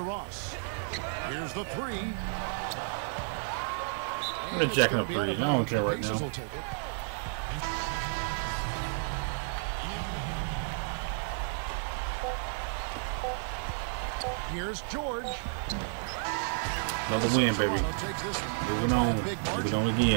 Ross. Here's the three. I'm going to jack up threes. I don't care right now. Here's George. Another win, baby. Moving on. Moving on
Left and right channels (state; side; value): silent; left; 57 dB below the other